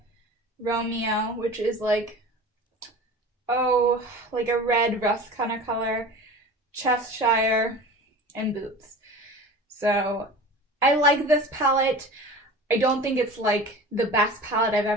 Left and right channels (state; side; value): normal; both; correlation 0.37